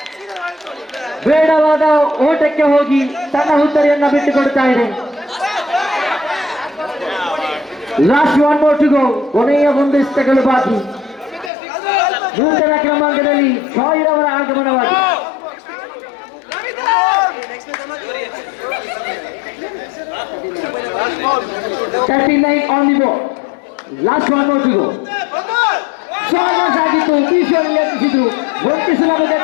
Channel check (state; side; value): drops out; right; at 11.5 s